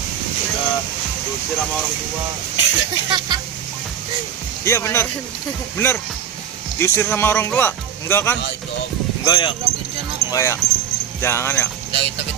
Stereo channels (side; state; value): left; quieter; 9.0 dB